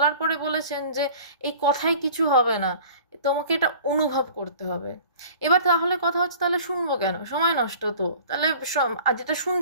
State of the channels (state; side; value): inverted; both; correlation -0.46